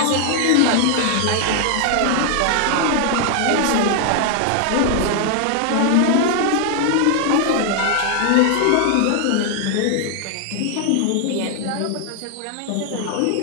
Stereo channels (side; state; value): both; different; correlation 0.00